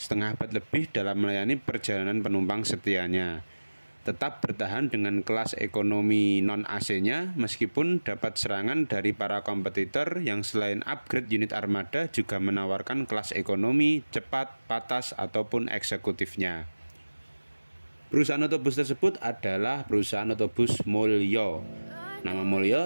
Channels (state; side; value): inverted; both; correlation -1.00